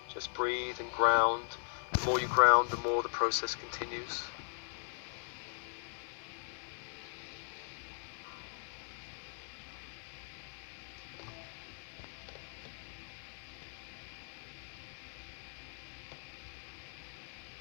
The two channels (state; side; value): silent; right; 52 dB below the other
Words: Just breathe and ground. The more you ground, the more the process continues.